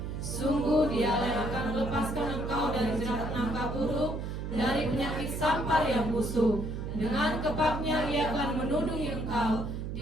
Sungguh Dialah yang akan melepaskan engkau dari jerat nangka burung, dari penyakit sampar yang busuk. Dengan kepaknya Ia akan menudungi engkau,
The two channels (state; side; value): noise; right; hum, 5 dB below the sound